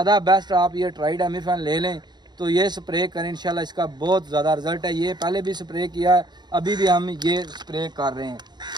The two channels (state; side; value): late; left; 0.21 ms